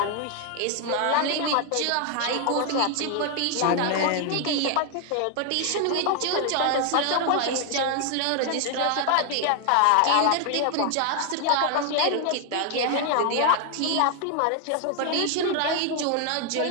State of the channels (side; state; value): both; different; correlation 0.00